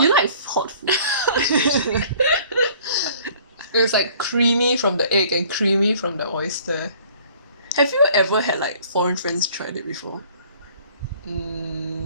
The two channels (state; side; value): inverted; both; correlation -0.53